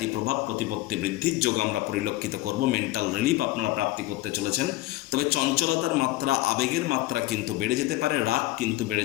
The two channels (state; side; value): quieter; right; 17.2 dB